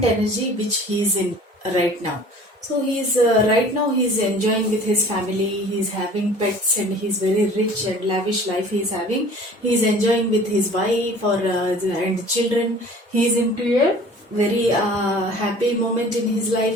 energy which he is in right now. So he's right now he's enjoying with his family, he's having pets, and he's very rich and lavish life he's having. He's enjoying with his wife or and children. He's into a very happy moment in his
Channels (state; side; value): normal; both; correlation 0.47